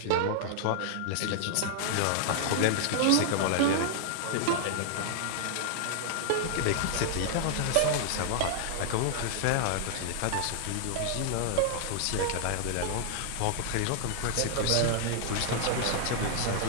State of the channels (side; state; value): both; different; correlation -0.01